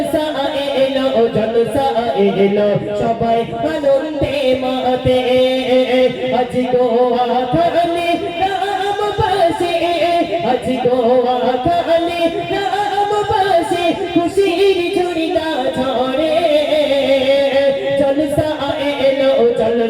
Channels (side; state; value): both; identical; correlation 1.00